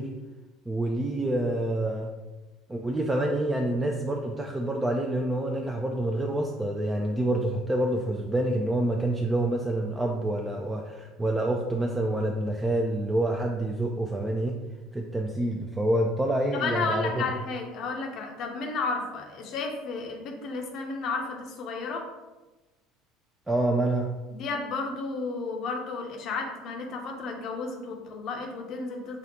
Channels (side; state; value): both; normal; correlation 0.70